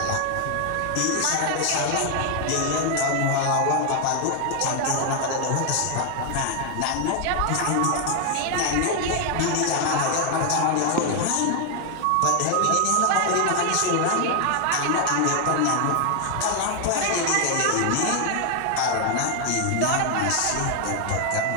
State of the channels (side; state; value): both; different; correlation 0.00